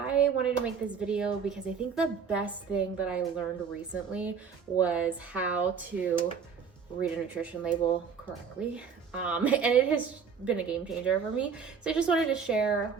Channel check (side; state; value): left; quieter; 6.3 dB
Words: wanted to make this video because I think the best thing that I learned recently was how to read a nutrition label correctly. And it has been a game changer for me. So I just wanted to share